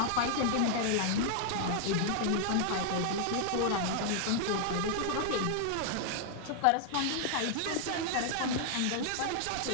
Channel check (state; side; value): different; both; correlation 0.00